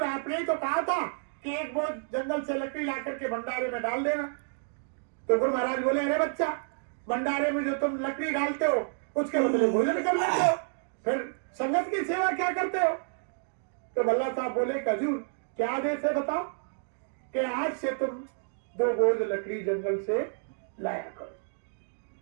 आपने ही तो कहा था कि एक बोझ जंगल से लकड़ी ला करके भंडारे में डाल देना। तो गुरु महाराज बोले, अरे बच्चा, भंडारे में जो तुम लकड़ी डालते हो उसके बदले भोजन कर लेते हो, फिर संगत की सेवा क्या करते हो? तो भल्ला साहब बोले, हजूर क्या आदेश है बताओ? कि आज से तुम 2 बोझ लकड़ी जंगल से लाया करो,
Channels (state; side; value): silent; left; digital silence